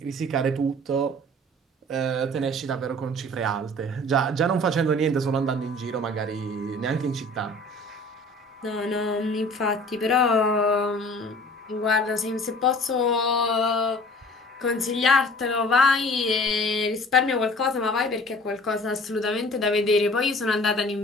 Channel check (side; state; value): both; normal; correlation 0.47